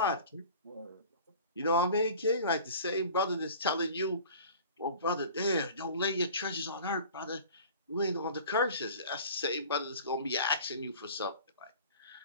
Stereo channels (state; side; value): inverted; both; correlation -0.43